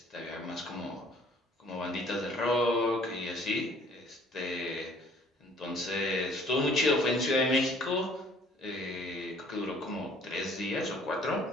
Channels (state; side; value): normal; both; correlation 0.56